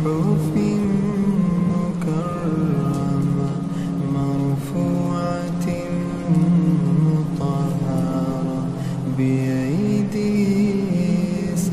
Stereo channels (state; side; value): identical; both; correlation 1.00